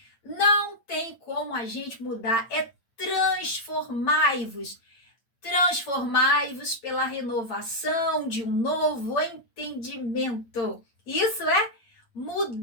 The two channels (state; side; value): late; right; 8.7 ms